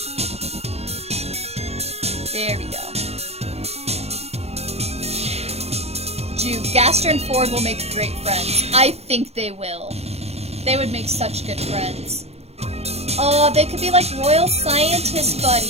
There we go. Gaster and Ford will make great friends. I think they will. They would make such good friends. Oh, they could be like royal scientist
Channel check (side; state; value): left; late; 0.30 ms